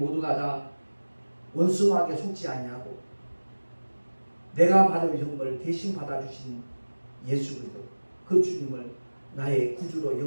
다 원수마귀에 속지 아니하고 내가 받을 형벌을 대신 받아주신 예수 그리스도 그 주님을 나의 구주로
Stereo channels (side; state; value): both; inverted; correlation -1.00